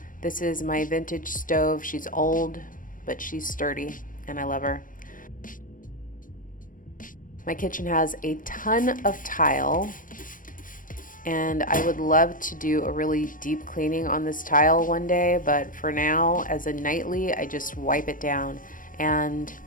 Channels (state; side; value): late; right; 0.39 ms